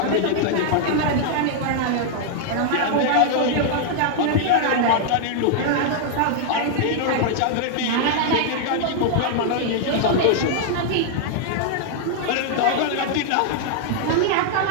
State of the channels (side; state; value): both; different; correlation -0.01